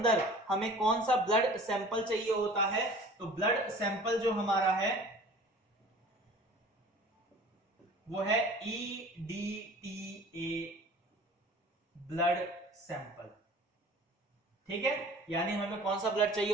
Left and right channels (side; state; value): both; normal; correlation 0.45